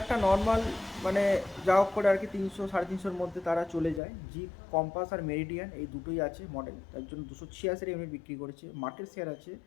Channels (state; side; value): drops out; right; at 4.0 s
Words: নর্মাল মানে যা হোক করে আর কি 300-350-এর মধ্যে তারা চলে যায়। জিপ কম্পাস আর মেরিডিয়ান এই দুটোই আছে মডেল, তার জন্য 286 ইউনিট বিক্রি করেছে। মার্কেট শেয়ার আছে